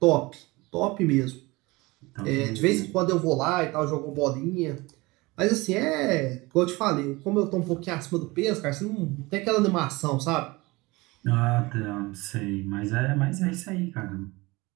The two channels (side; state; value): left; quieter; 22.7 dB